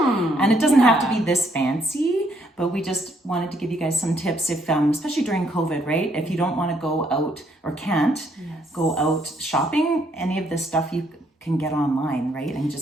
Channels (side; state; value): both; normal; correlation 0.70